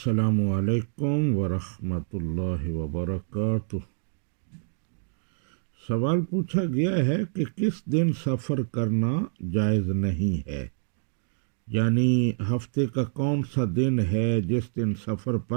علیکم ورحمۃ اللہ وبرکاتہ۔ سوال پوچھا گیا ہے کہ کس دن سفر کرنا جائز نہیں ہے، یعنی ہفتے کا کون سا دن ہے جس دن سفر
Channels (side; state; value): left; silent; digital silence